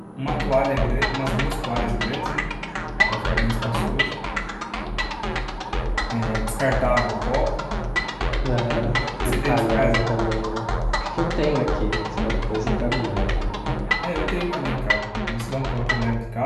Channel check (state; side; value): identical; both; correlation 1.00